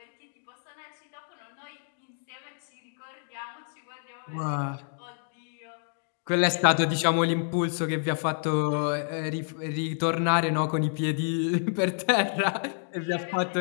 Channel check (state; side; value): silent; right; digital silence